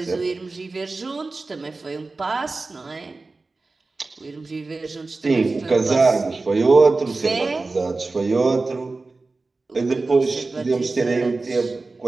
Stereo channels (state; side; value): quieter; left; 3.6 dB